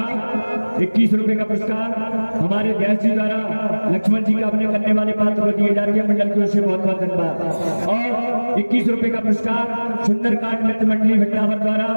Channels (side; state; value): both; inverted; correlation -1.00